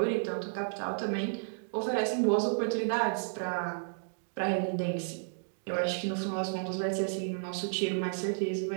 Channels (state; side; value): silent; left; digital silence